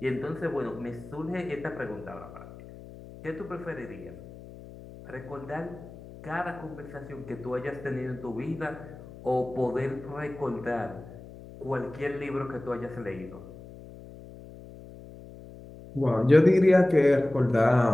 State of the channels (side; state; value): left; noise; hum, 16 dB below the sound